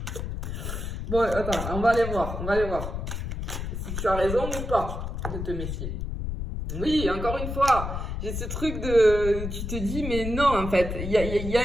Bon, attends, on va aller voir. Si tu as raison ou pas de te méfier. Oui, encore une fois, j'ai ce truc de... Tu te dis, mais non, en fait, il y a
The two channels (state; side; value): noise; left; rumble, 5 dB below the sound